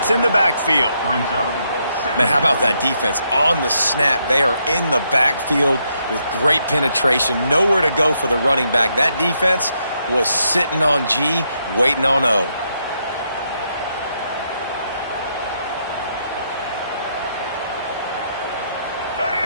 in the backfield. Man, how about that defense? On the snap, they are in the backfield with great penetration. Nowhere to go for the running back. That defense was sitting on G, waiting on O.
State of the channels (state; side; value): inverted; both; correlation -0.77